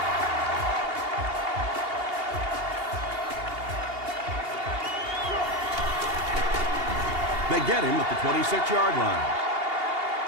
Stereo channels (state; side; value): late; left; 2.8 ms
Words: They get him at the 26-yard line.